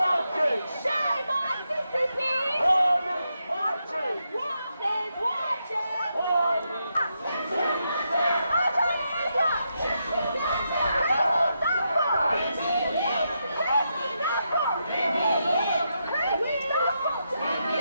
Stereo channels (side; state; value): both; inverted; correlation -0.83